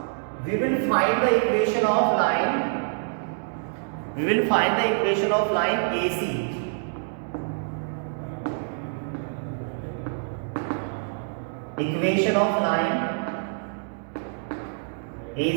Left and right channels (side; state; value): left; silent; 61 dB below the other